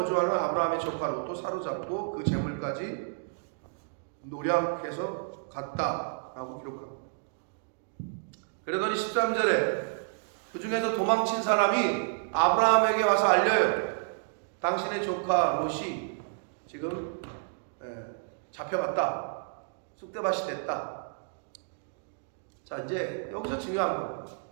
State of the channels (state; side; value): silent; left; digital silence